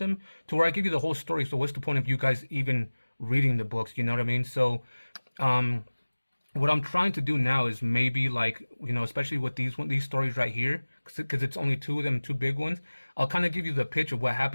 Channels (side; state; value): both; inverted; correlation -1.00